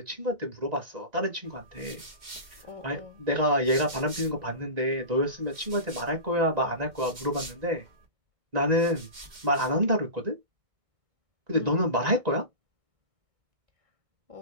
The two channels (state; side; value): late; left; 2.1 ms